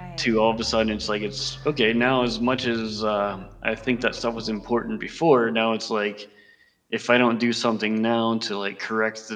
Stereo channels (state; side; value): identical; both; correlation 1.00